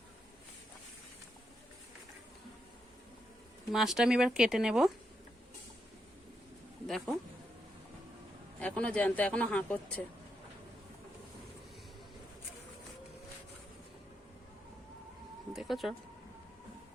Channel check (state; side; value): normal; both; correlation 0.82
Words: মাছটা আমি এবার কেটে নেব। দেখো এখনো জ্যান্ত, এখনো হাঁ করছে। দেখেছ,